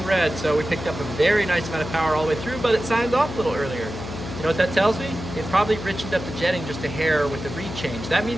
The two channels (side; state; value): left; noise; hum, 9 dB below the sound